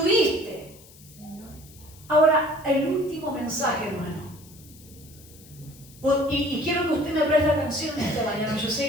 Ahora, el último mensaje, hermano. Y quiero que usted me preste atención esta mañana. Yo sé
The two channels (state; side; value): noise; left; hiss, 22 dB below the sound